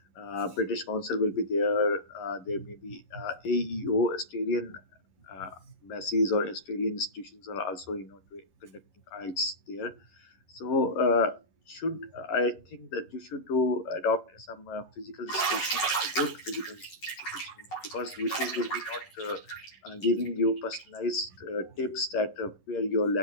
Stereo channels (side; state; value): right; late; 11 ms